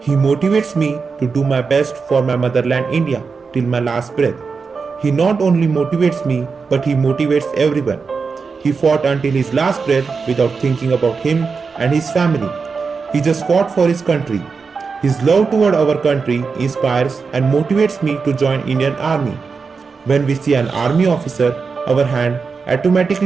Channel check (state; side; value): quieter; left; 5.0 dB